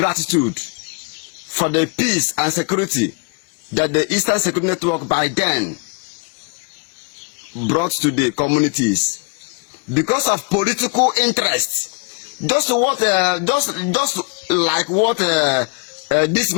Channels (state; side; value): quieter; right; 34.8 dB